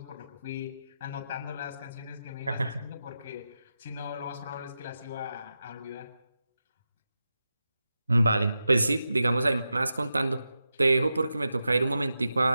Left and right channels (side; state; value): both; inverted; correlation -0.90